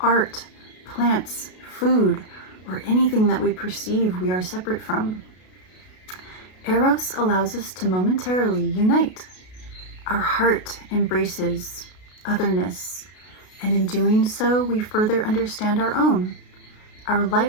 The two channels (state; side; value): late; right; 33 ms